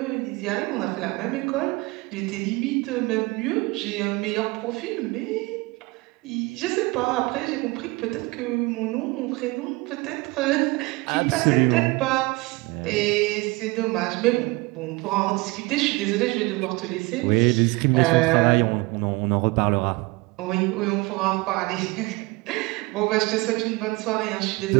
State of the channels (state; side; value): quieter; left; 24.2 dB